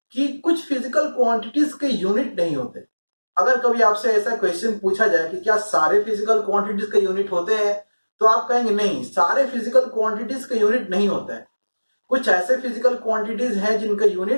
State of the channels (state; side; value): inverted; both; correlation -1.00